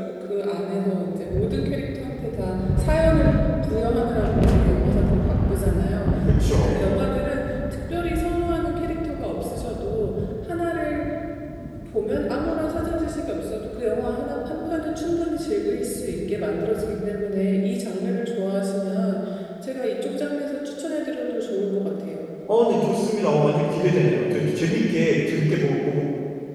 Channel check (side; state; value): both; identical; correlation 1.00